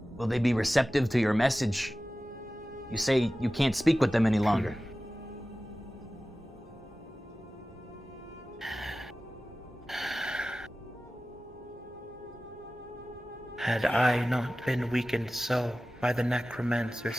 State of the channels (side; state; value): both; normal; correlation 0.96